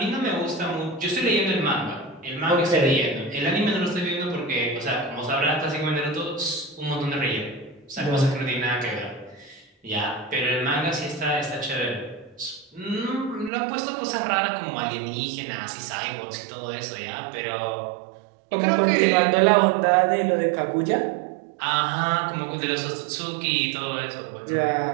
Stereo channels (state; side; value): drops out; left; at 13.5 s